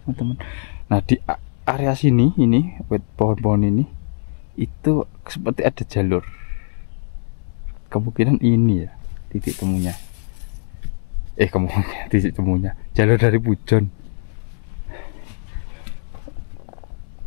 Nah di area sini ini buat pohon-pohon ini itu seperti ada jalur. Kemungkinan ini ya titik temunya. Titik temunya jalur dari Pujon.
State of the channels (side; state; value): right; silent; digital silence